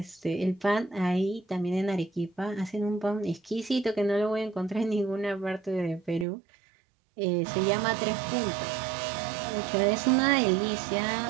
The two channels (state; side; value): drops out; left; at 6.2 s